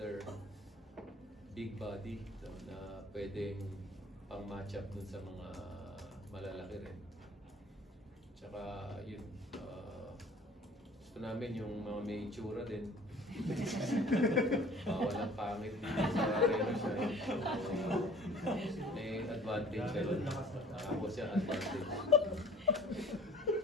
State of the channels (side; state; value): both; normal; correlation 0.48